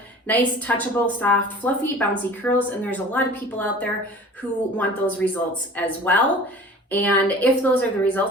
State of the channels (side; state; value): both; normal; correlation 0.43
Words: nice, touchable, soft, fluffy, bouncy curls, and there's a lot of people out there who want those results as well. And if those are the